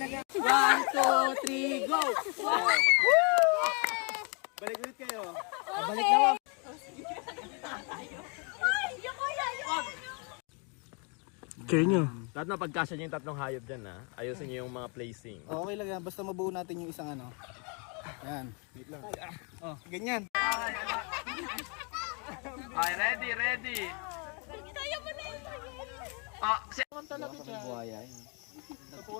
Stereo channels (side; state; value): right; quieter; 35.3 dB